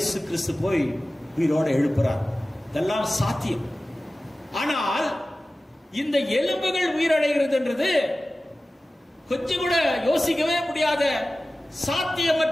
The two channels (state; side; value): normal; both; correlation 0.96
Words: கிறிஸ்து போய் உயிரோட எழுப்புறார். இதெல்லாம் சாத்தியம். ஆனால் இந்த எலும்புகள் உயிரடைகிறது என்றது கொஞ்சம் கூட யோசிக்கவே முடியாத